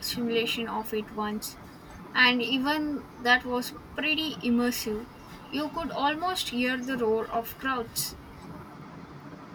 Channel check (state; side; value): identical; both; correlation 1.00